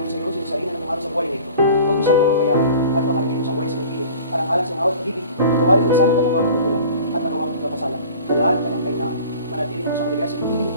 sa iyo, sinasarina ng pangalo sa buhay nito. Huwag mo siyang pamabayaan at pamanagin mo siyang buhay sa nagpili. Parang alang siyang awat pag-ibig, patawarin mo sana kanyang mga pagkukulang at nagawang pagkakasala. Dalaan kanyang kainaan. Manatili naman siyang maligaya sa nagpili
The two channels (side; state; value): both; inverted; correlation -0.43